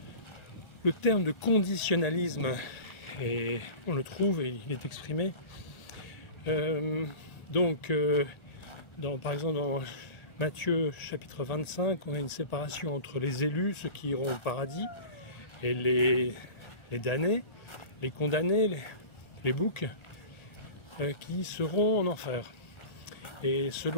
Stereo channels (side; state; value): right; late; 1.3 ms